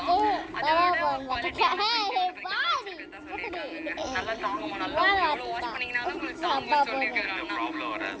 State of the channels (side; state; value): both; identical; correlation 1.00